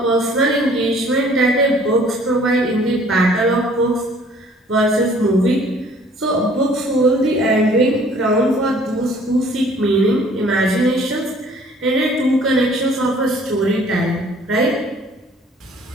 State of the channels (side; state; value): both; normal; correlation 0.55